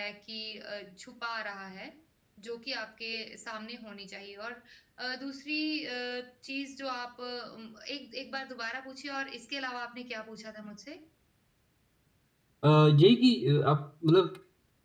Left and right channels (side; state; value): both; identical; correlation 1.00